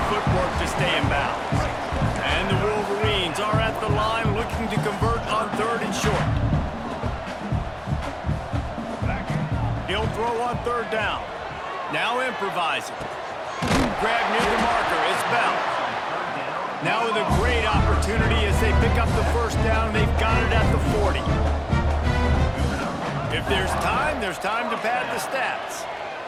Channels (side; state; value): both; identical; correlation 1.00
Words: footwork to stay in bounds. And the Wolverines are at the line looking to convert on 3rd and short. He'll throw on 3rd down. Now improvising. Grab near the marker. It's Bell. Now with a great opportunity as they pick up the 1st down. They've got it at the 40. If there's time to pad the stats.